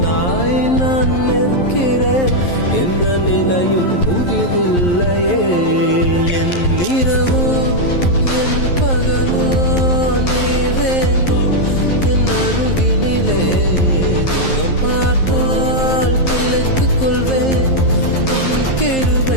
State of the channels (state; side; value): late; right; 11 ms